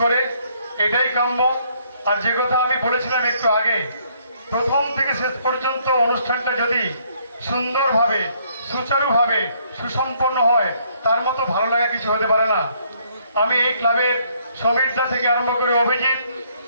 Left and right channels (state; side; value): inverted; both; correlation -0.67